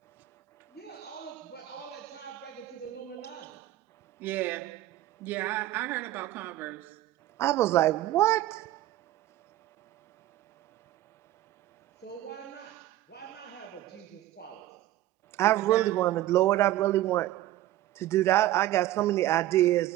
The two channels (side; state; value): left; quieter; 14.7 dB